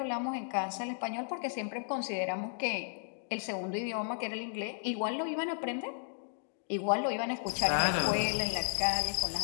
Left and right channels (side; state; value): right; silent; digital silence